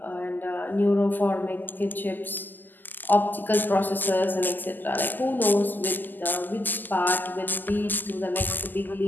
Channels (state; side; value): late; right; 0.088 ms